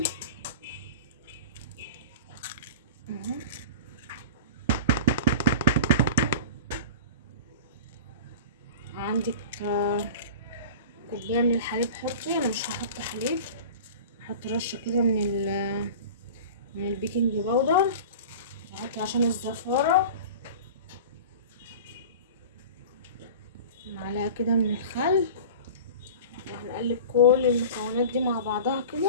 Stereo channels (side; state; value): both; inverted; correlation -0.35